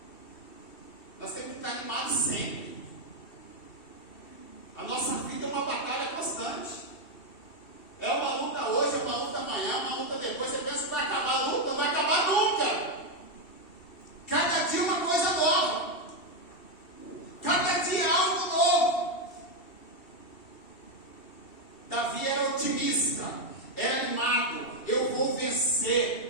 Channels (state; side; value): late; right; 2.7 ms